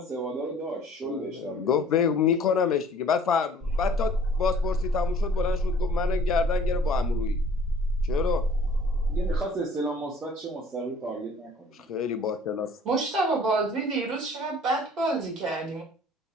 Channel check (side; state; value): both; normal; correlation 0.52